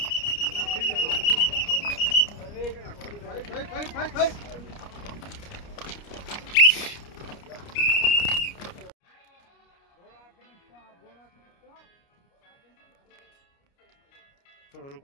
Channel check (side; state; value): right; late; 29 ms